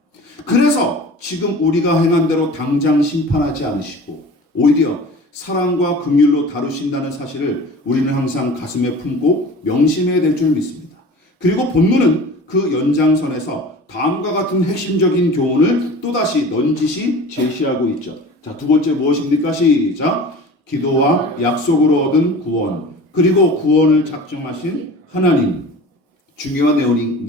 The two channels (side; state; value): both; normal; correlation 0.40